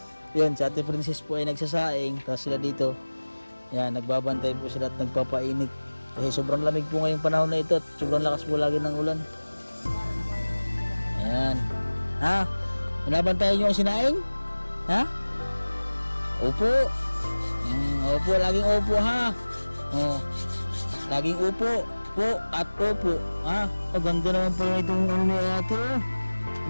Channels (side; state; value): both; inverted; correlation -1.00